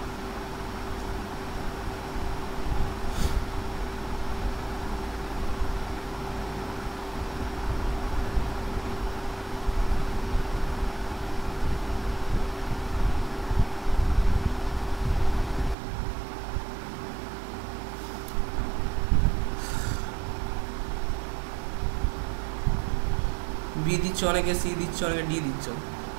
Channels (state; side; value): drops out; left; at 15.8 s